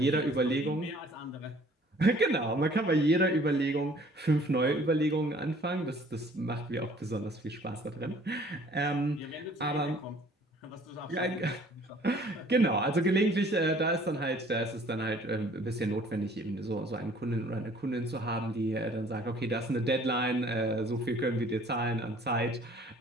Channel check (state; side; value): normal; both; correlation 0.55